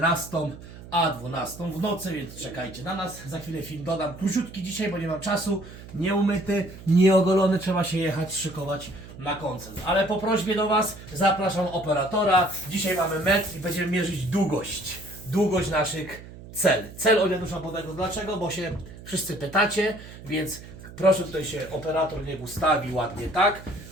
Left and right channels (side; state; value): right; noise; hum, 16 dB below the sound